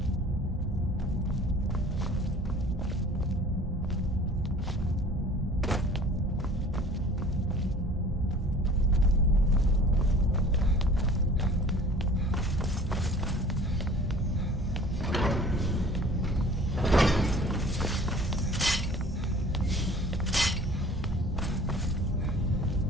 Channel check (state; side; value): normal; both; correlation 0.48